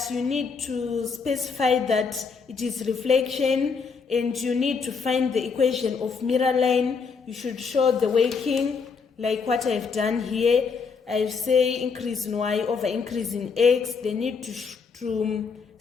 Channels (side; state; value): right; quieter; 5.3 dB